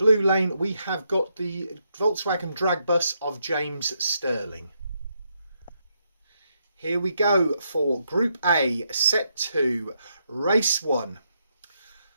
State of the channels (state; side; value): inverted; both; correlation -0.78